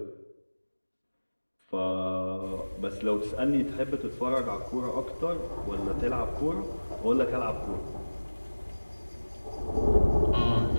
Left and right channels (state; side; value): inverted; both; correlation -1.00